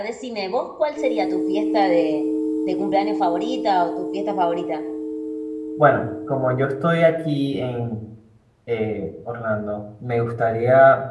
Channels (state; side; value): identical; both; correlation 1.00